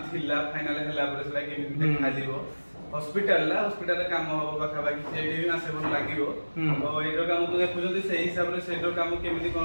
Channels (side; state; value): both; inverted; correlation -1.00